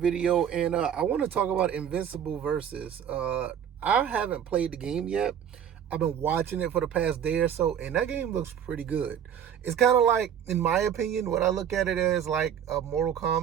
and I want to talk about Invincible Versus. I haven't played the game yet. I've been watching it for the past day or so, and that game looks pretty good. It's kind of like, in my opinion, what I look at it as like a Mortal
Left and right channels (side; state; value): left; quieter; 8.9 dB